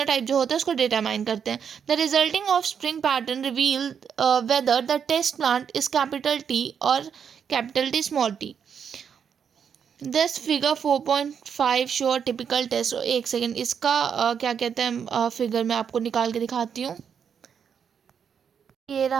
जो होता है उसको डिटरमाइन करते हैं। The resulting offspring pattern reveal whether the test plant is capital T और capital T small T. This figure 4.5 show typical test. एक सेकेंड, इसका क्या कहते हैं फिगर मैं आपको निकाल के दिखाती हूँ। ये रहा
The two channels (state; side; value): quieter; left; 7.4 dB